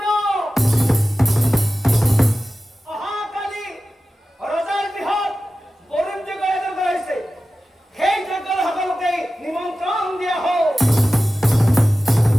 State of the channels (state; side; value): normal; both; correlation 0.94